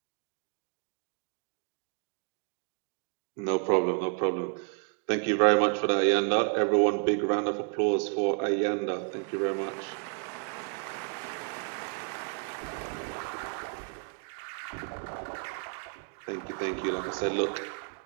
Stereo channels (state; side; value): quieter; left; 38.6 dB